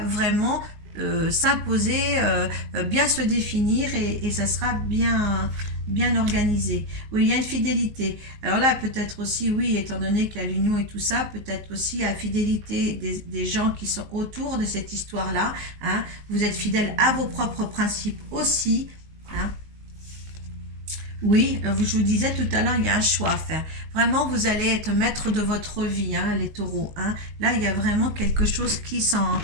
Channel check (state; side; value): late; left; 19 ms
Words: s'imposer, bien se définir et ça sera bien organisé. Oui, il y a une fidélité. Alors là, peut-être aussi, oui, étant donné qu'il y a l'union et tout ça, peut-être aussi la fidélité des gens qui sont autour de cette histoire-là, hein. Vous êtes fidèle à vos propres principes aussi, hein. Oui, je vous disais tout à l'heure, il y a un choix à faire. Vraiment, vous allez être maître de votre vie, hein, les taureaux, hein. Là, il y a vraiment quelque chose qui